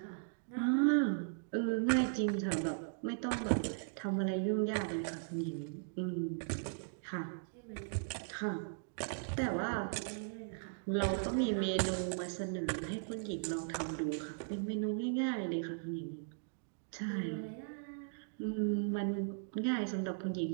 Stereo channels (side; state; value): left; silent; digital silence